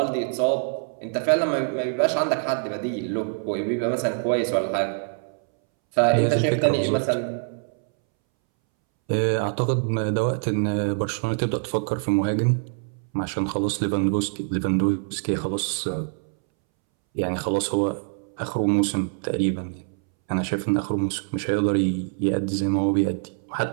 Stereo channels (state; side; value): silent; left; 62 dB below the other